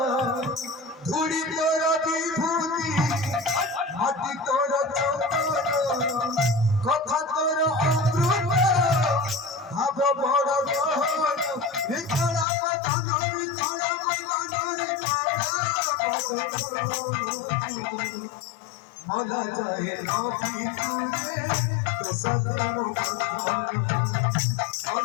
ধুড়ি তোরা বিভূতি মাটি তোরা চন্দন কথা তোরা অমৃত ভাব বড় গহন ভিতরা বদন ভিতরা বদন মলা যায় নবী তুরে তো সাথে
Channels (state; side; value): drops out; right; at 12.5 s